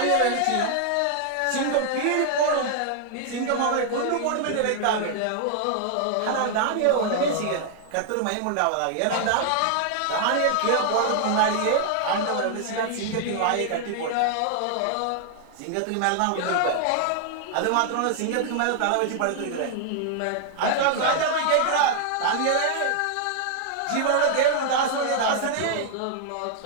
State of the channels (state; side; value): different; both; correlation 0.00